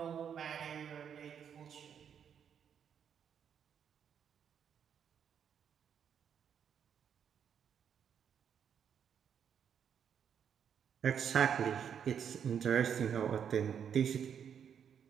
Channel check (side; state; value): left; quieter; 8.1 dB